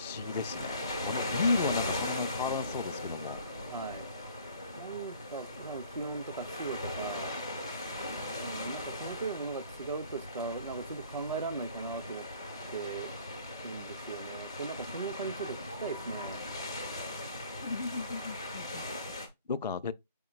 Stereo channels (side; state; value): both; inverted; correlation -0.53